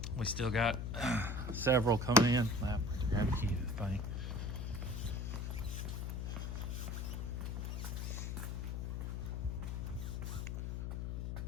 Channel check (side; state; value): left; noise; hum, 2 dB below the sound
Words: We still got several coming in. I have to grab a key to the thing.